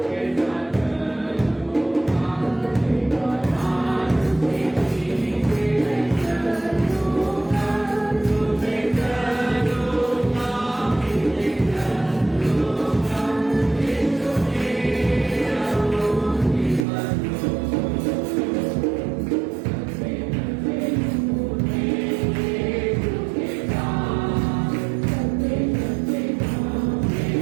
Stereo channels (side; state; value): left; drops out; at 16.9 s